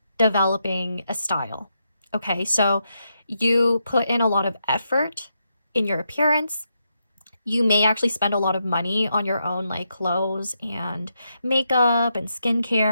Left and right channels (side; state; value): both; inverted; correlation -0.83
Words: developing a style. Okay, so you put in a lot of effort in your appearance. You may actually spend a lot of money on your own, like clothes and makeup and